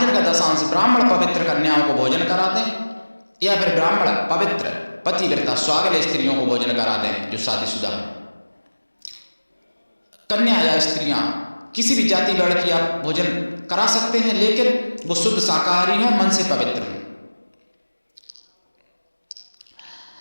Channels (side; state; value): both; inverted; correlation -1.00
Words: का दशांश ब्राह्मण पवित्र कन्याओं को भोजन करा दें, या फिर ब्राह्मण पवित्र पतिव्रता स्वागल स्त्रियों को भोजन करा दें जो शादीशुदा हैं। कन्या या स्त्रियां किसी भी जाति वर्ण की आप भोजन करा सकते हैं, लेकिन वो शुद्ध शाकाहारी हो, मन से पवित्र हो।